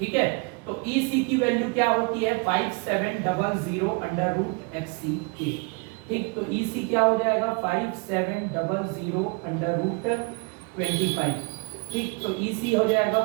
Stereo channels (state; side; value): quieter; left; 31.3 dB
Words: है। तो EC की वैल्यू क्या होती है 5700 अंडर रूट FCK, ठीक। तो EC क्या हो जाएगा 5700 अंडर रूट 25, ठीक। तो EC हो जाएगा